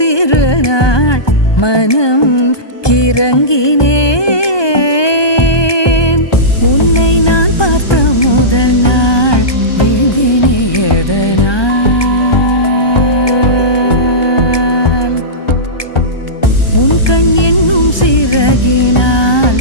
மனம் கிறங்கினேன். உன்னை நான் பார்த்த முதல் நாள் வீழ்ந்தினே எதனால், உன் கண் என்னும் சிறகினால்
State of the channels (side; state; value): right; late; 1.2 ms